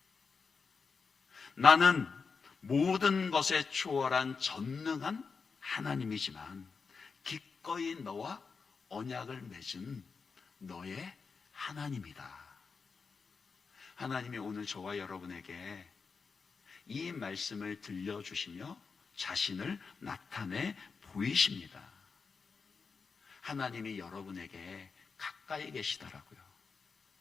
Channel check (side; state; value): right; quieter; 5.1 dB